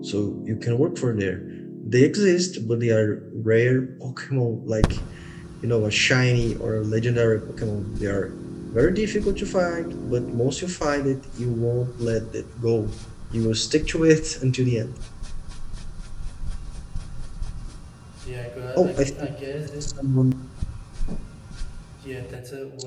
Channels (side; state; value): both; identical; correlation 1.00